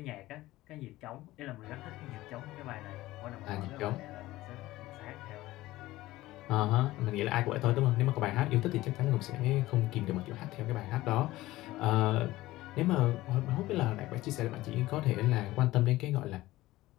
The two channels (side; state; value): right; quieter; 17.2 dB